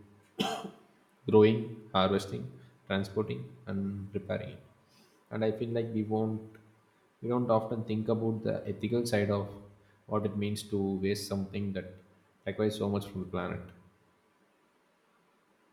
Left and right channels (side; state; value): both; identical; correlation 1.00